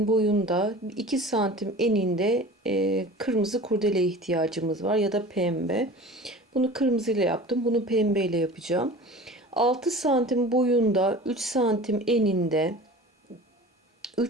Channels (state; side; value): normal; both; correlation 0.38